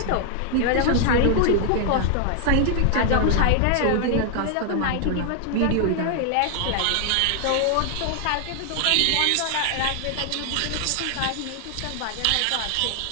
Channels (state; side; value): different; both; correlation 0.00